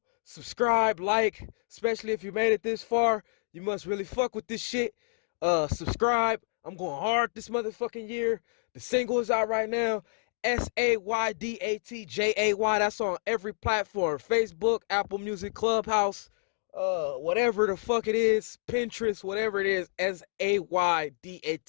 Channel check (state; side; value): silent; right; digital silence